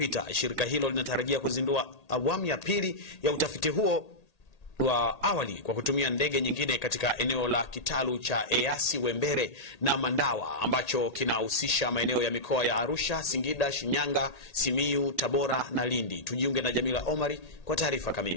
shirika hilo linatarajia kuzindua awamu ya pili ya utafiti huo wa awali kwa kutumia ndege nyingine katika eneo la kitalu cha Eyasi Wembere na Mandawa ambacho kinahusisha maeneo ya mikoa ya Arusha, Singida, Shinyanga, Simiyu, Tabora na Lindi. Tujiunge na Jamila Omari kwa taarifa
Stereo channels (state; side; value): late; right; 1.8 ms